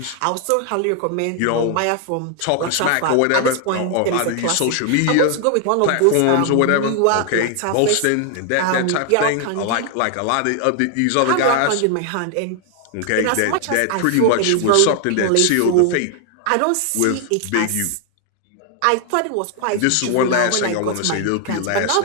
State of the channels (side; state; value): both; different; correlation 0.00